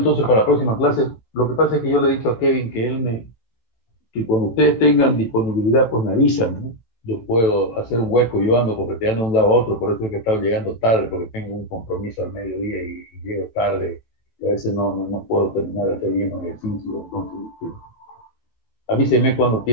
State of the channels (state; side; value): late; right; 18 ms